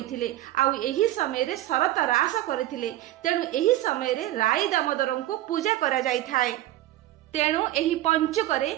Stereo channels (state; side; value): quieter; left; 15.0 dB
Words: आउ एही समय रे शरत रास करथिले, तेणु एही समय रे राई दामोदर को पूजा करा जाय थाए। तेणु एही पंचुकरे